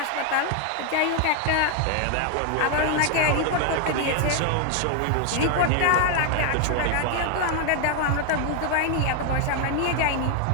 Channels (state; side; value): different; both; correlation 0.01